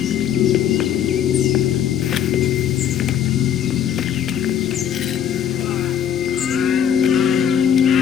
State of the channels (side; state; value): right; quieter; 9.3 dB